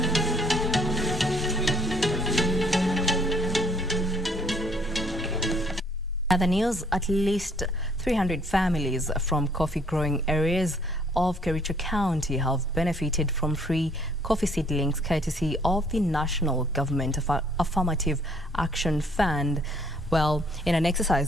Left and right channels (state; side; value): normal; both; correlation 0.63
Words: Other news, at least 300 families from coffee-growing areas of Kericho County have benefited from free coffee seedlings courtesy of the National Government Affirmative Action Fund. Well, in an